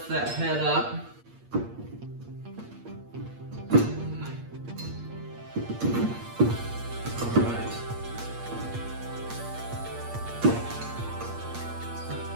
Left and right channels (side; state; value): left; late; 8.5 ms